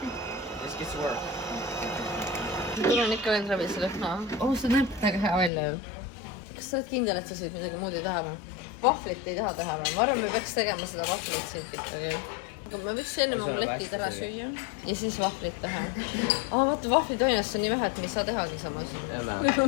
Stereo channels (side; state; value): right; drops out; at 5.5 s